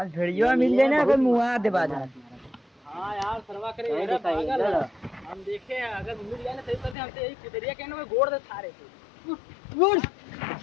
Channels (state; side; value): drops out; right; at 7.0 s